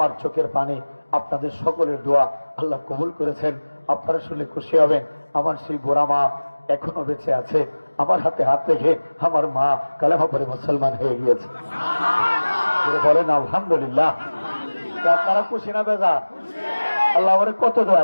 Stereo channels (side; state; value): both; inverted; correlation -1.00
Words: চোখের পানি আপনাদের সকলের দোয়া আল্লাহ কবুল করেছেন। আপনারা শুনলে খুশি হবেন, আমার সেই বোরা মা এখনো বেঁচে আছে। আমার হাতে হাত রেখে আমার মা কালেমা পড়ে মুসলমান হয়ে গিয়েছে। বলেন আলহামদুলিল্লাহ। আপনারা খুশি না বেজা? আল্লাহ আমার কত